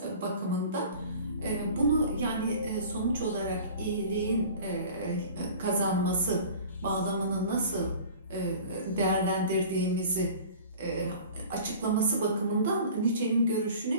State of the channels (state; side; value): inverted; both; correlation -0.43